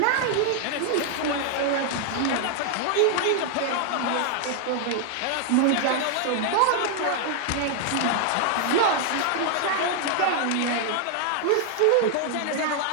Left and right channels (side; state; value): both; different; correlation 0.00